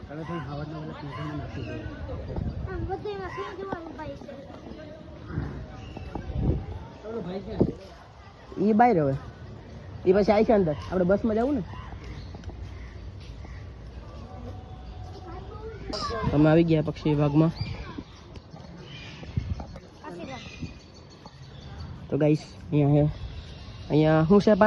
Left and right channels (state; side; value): identical; both; correlation 1.00